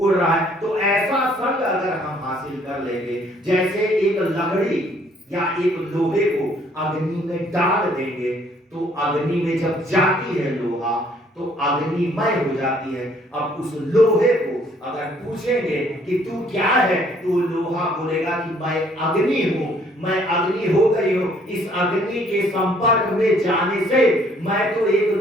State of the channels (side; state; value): both; normal; correlation 0.63